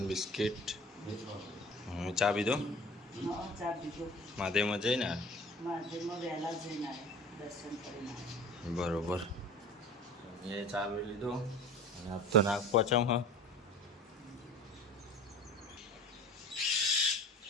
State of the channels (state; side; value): normal; both; correlation 0.40